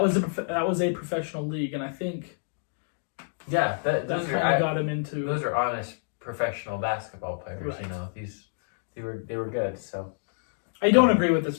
was a professional league, and I think that kind of got him into. Those are honest professional basketball players. They were good. So I don't agree with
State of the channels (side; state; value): right; silent; digital silence